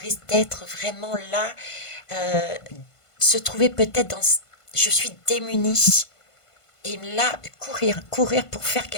d'être vraiment là, se trouver peut-être dans... Je suis démunie. Et là, courir pour faire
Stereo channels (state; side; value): late; right; 1.5 ms